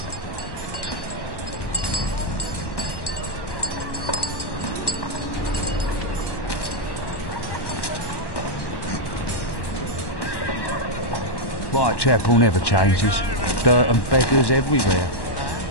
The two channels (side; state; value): right; late; 1.1 ms